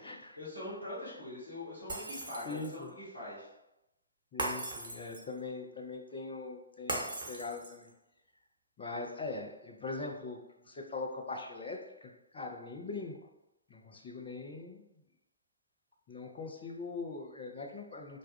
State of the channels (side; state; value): both; inverted; correlation -0.32